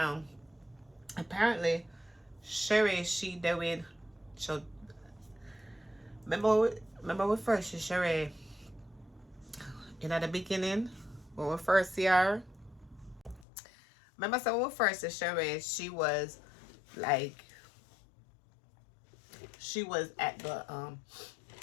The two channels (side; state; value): right; drops out; at 13.5 s